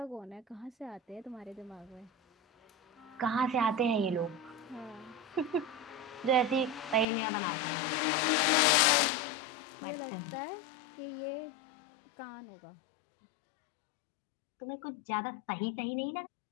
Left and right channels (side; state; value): right; drops out; at 7.1 s